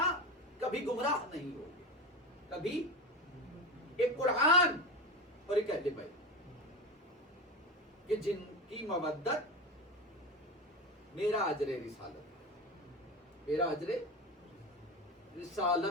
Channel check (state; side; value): normal; both; correlation 0.23